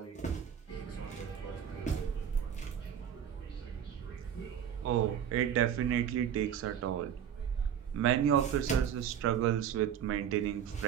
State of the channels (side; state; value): left; quieter; 8.9 dB